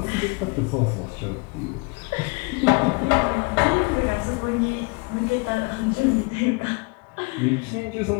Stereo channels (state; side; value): quieter; right; 29.6 dB